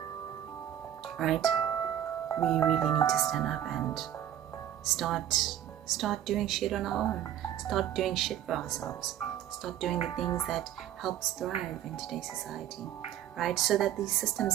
right? We really need to stand up and start doing shit on our own. Start doing shit for ourselves. Start doing the things that help us thrive in today's society, right? So that these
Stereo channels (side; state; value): left; quieter; 11.2 dB